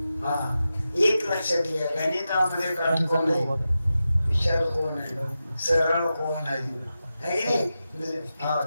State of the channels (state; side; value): inverted; both; correlation -0.91